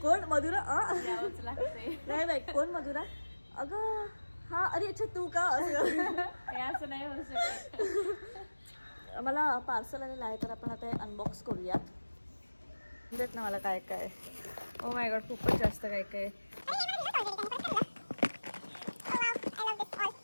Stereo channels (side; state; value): both; inverted; correlation -1.00